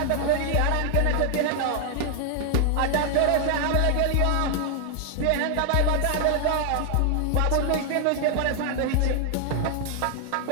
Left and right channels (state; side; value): different; both; correlation 0.00